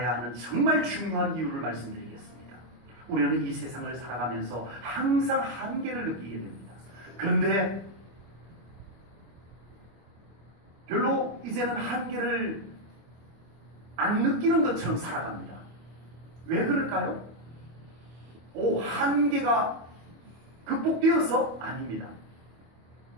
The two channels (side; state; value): left; late; 25 ms